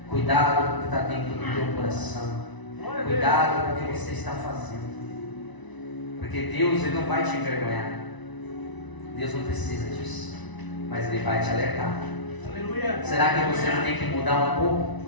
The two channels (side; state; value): right; late; 1.0 ms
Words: Cuidado com o que está dentro do teu coração. Cuidado com o que você está fazendo. Porque Deus ele não vai te envergonhar. Deus não precisa disso. Mas Ele vai te alertar. Aleluia. Será que você não tem que mudar um